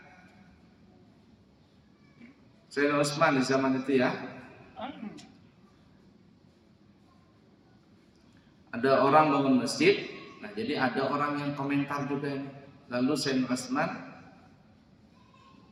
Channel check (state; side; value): identical; both; correlation 1.00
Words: Sayyidina Utsman di zaman itu ya, ada orang bangun masjid. Nah, jadi ada orang yang komentar juga. Lalu Sayyidina Utsman